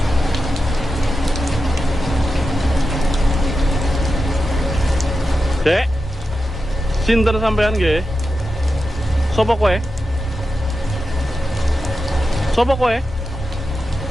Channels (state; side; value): normal; both; correlation 0.90